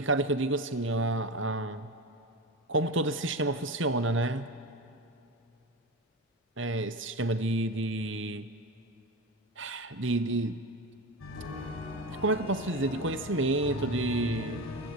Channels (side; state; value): both; normal; correlation 0.24